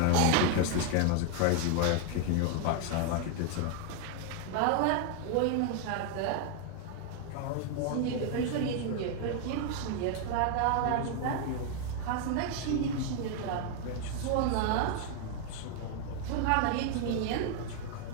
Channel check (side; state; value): both; different; correlation 0.00